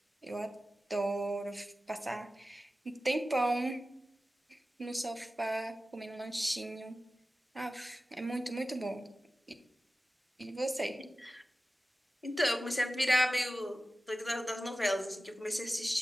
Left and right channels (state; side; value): normal; both; correlation 0.95